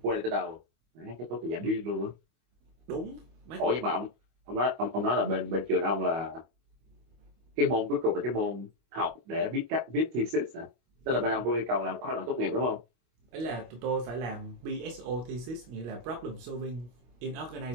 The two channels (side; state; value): left; late; 25 ms